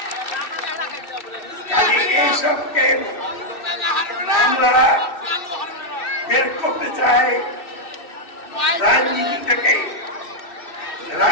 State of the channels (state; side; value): late; right; 2.6 ms